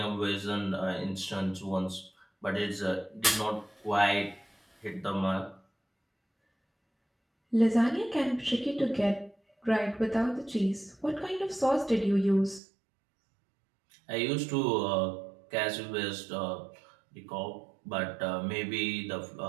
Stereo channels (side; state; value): left; drops out; at 12.6 s